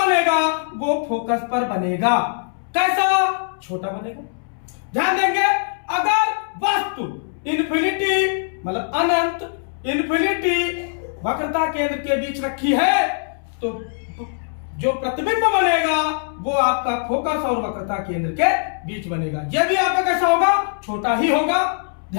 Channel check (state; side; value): silent; right; 65 dB below the other